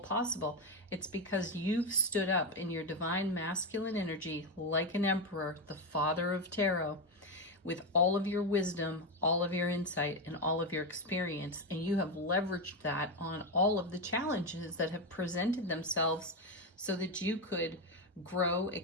It's because you've stood up in your divine masculine energy like an emperor, the father of tarot, with all of your wisdom, all of your insight, and all of your experience. And you have leveraged that on all of the challenges that have presented themselves so that you could grow,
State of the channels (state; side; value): normal; both; correlation 0.09